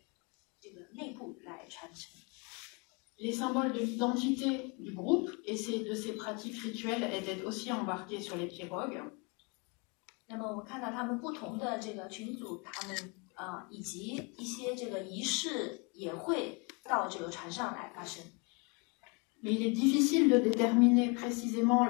这个内部来传承。Les symboles de l'identité du groupe et de ces pratiques rituelles étaient aussi embarqués sur les pirogues. 那么我们看到他们不同的这个群组，他们以及一些这个仪式也会到这个船上来发生。Mais il est difficile de déterminer précisément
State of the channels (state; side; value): quieter; right; 31.7 dB